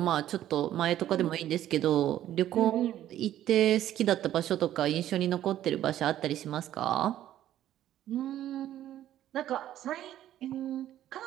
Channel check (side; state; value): left; quieter; 12.3 dB